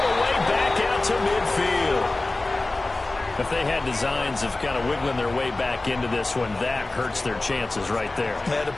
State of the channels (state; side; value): quieter; right; 3.0 dB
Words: the way back out to midfield. If they had designs of kind of wiggling their way back into this one, that hurts their chances right there. They had to